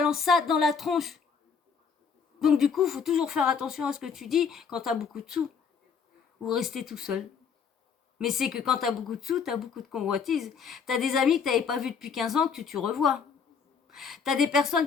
ça dans la tronche. Donc du coup, faut toujours faire attention à ce que tu dis quand t'as beaucoup de sous ou rester tout seul. Mais c'est que quand t'as beaucoup de sous, t'as beaucoup de convoitises. T'as des amis que t'avais pas vus depuis 15 ans que tu revois. T'as des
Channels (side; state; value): right; quieter; 6.1 dB